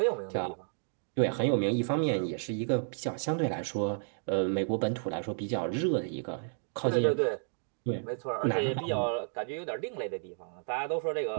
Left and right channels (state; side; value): silent; left; 57 dB below the other